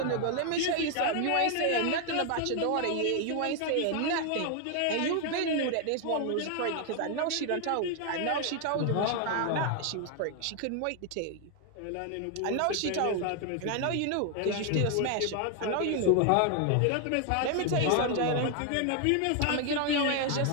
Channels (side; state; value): both; different; correlation 0.01